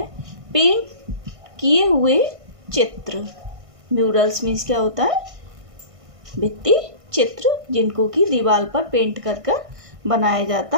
पेंट किए हुए चित्र। म्यूरल्स मीन्स क्या होता है? भित्ति चित्र, जिनको कि दीवार पर पेंट कर कर बनाया जाता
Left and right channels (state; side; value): late; left; 1.5 ms